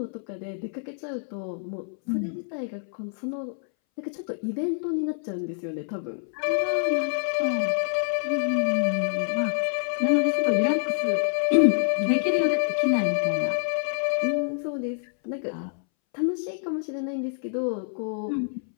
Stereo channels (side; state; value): right; silent; 60 dB below the other